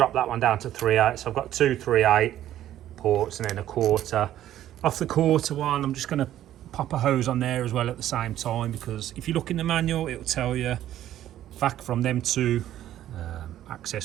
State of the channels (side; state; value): left; quieter; 12.4 dB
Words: that one down to 3/8, so I've got 2 3/8 ports and then a 1/4. Off the 1/4 one, I'm just going to pop a hose on there as well at the same time, because if you look in the manual, it'll tell you vac from them 2